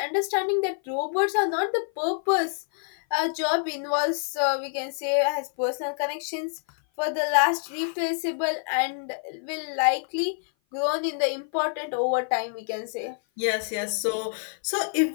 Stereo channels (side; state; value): right; silent; 56 dB below the other